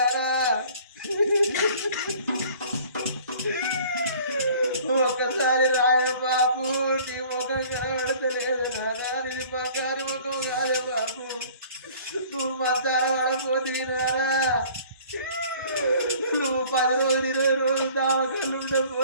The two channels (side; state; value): both; inverted; correlation -0.50